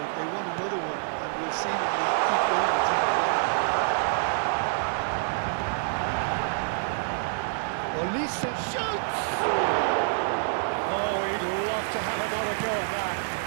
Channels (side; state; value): left; silent; digital silence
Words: They want another one, and will seemingly keep going until they get it. Olise shoots! Oh, he'd love to have another go at that.